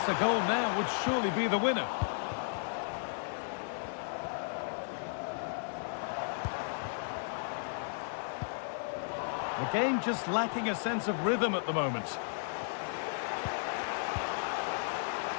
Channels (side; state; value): right; silent; digital silence